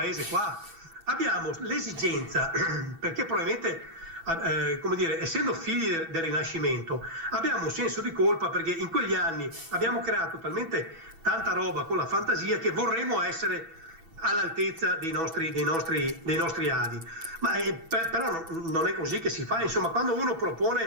qua, abbiamo l'esigenza, perché probabilmente come dire, essendo figli del Rinascimento, abbiamo un senso di colpa perché in quegli anni abbiamo creato talmente tanta roba con la fantasia che vorremmo essere all'altezza dei nostri adi. Ma però non è così che si fa. Insomma, quando uno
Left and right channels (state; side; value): late; left; 8.7 ms